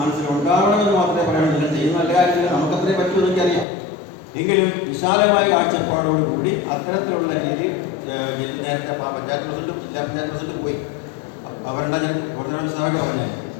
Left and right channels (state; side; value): drops out; right; at 3.7 s